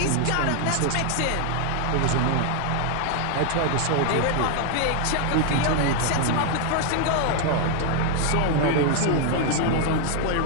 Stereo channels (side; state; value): both; different; correlation 0.01